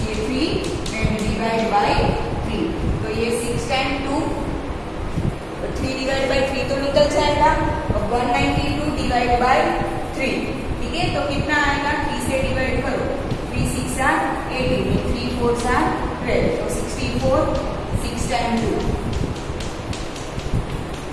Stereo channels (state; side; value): identical; both; correlation 1.00